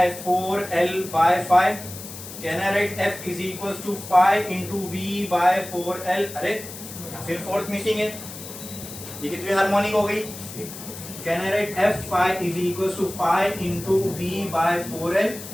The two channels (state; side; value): noise; left; hiss, 12 dB below the sound